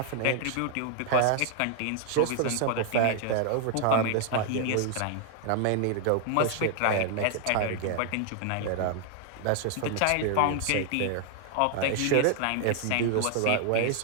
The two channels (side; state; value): both; different; correlation 0.00